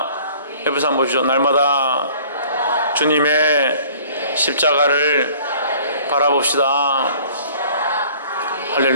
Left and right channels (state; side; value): inverted; both; correlation -0.52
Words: 옆에서 한번 보시죠. 날마다 주님의 십자가를 바라봅시다.